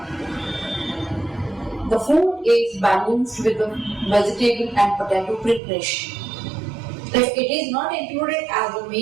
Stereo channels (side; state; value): left; drops out; at 5.6 s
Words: the food is balanced with the vegetable and potato preparation. If it is not included as a